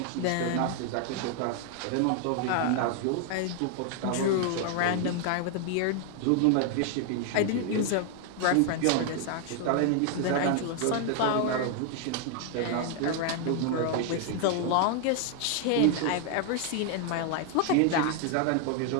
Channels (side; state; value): both; different; correlation 0.00